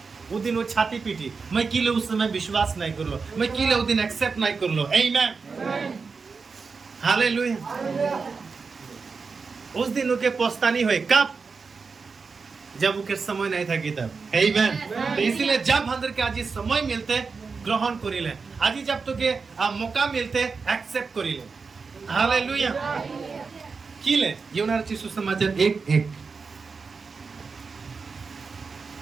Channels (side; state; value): left; quieter; 4.9 dB